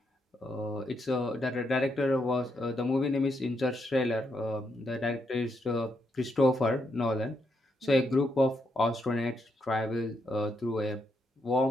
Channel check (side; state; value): both; normal; correlation 0.79